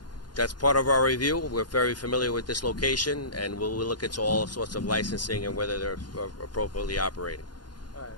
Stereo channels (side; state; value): right; late; 0.70 ms